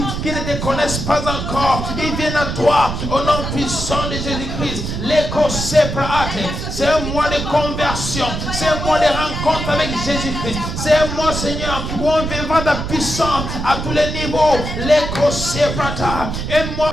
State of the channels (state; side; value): noise; right; rumble, 4 dB below the sound